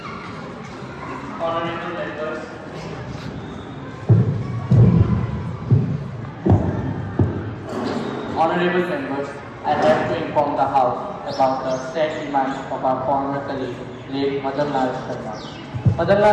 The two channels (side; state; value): both; identical; correlation 1.00